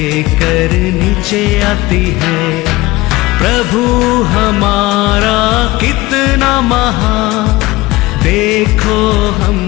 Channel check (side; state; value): right; quieter; 19.7 dB